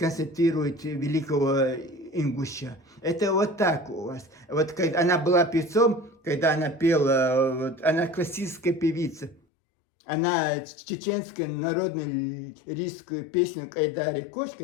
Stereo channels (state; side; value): drops out; right; at 9.4 s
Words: великого ингуша. Это вот так у вас. Вот когда она была певцом, когда она пела, вот, она классическая певица. Она чеченскую народную лирическую песню Кайдари Коч,